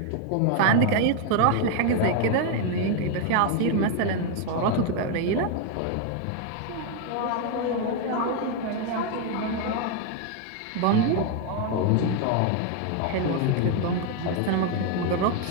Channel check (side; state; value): both; different; correlation 0.01